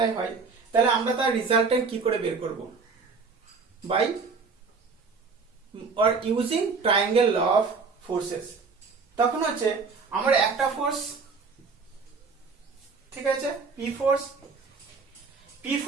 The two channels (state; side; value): quieter; left; 4.7 dB